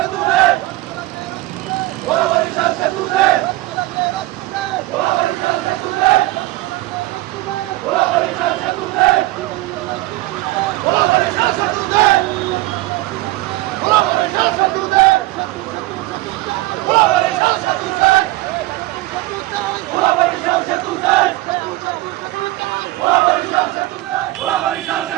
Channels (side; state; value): left; quieter; 18.9 dB